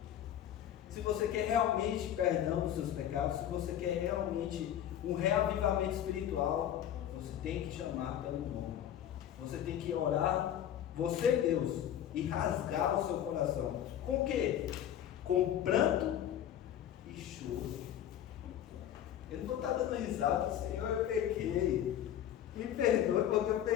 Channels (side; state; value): right; quieter; 10.7 dB